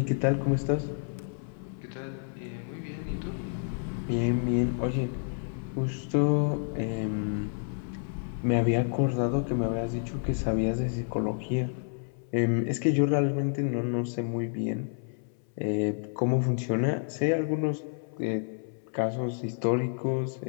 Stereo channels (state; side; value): silent; right; 58 dB below the other